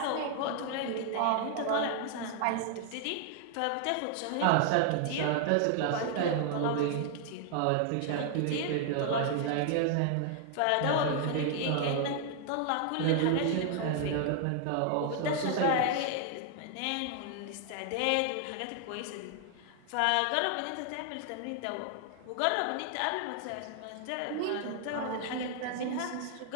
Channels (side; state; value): both; different; correlation 0.00